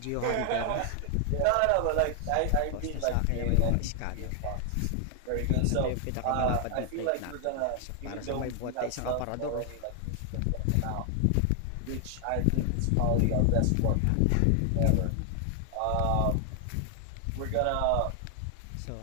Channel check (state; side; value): different; both; correlation 0.00